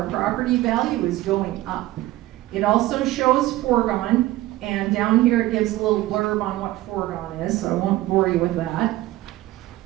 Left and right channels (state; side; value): quieter; left; 16.7 dB